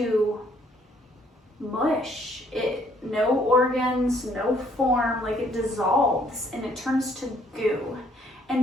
mush. No organs, no form, like it dissolves and it turns to goo.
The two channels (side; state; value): both; normal; correlation 0.65